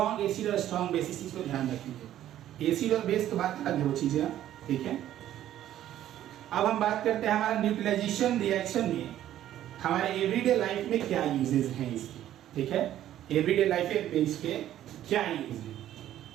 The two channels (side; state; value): left; quieter; 12.2 dB